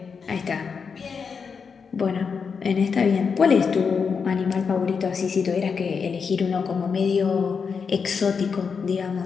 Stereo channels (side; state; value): right; quieter; 5.8 dB